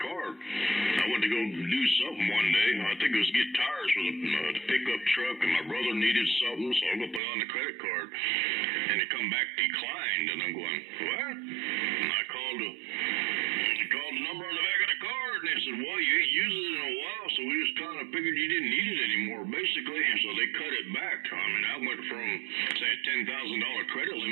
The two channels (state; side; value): drops out; left; at 7.2 s